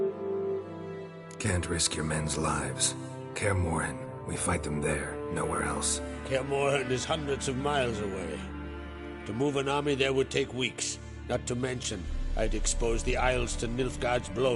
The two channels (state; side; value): identical; both; correlation 1.00